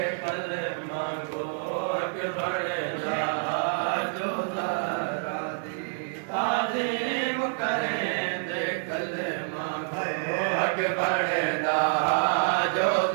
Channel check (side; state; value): left; silent; 60 dB below the other